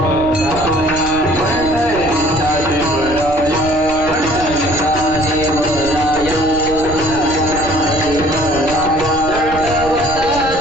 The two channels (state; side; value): noise; right; rumble, 12 dB below the sound